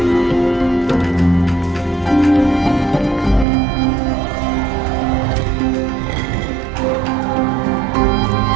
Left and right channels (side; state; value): left; drops out; at 3.5 s